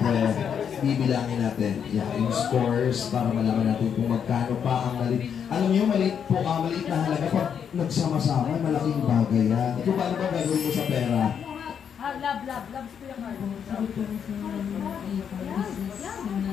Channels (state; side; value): quieter; right; 7.8 dB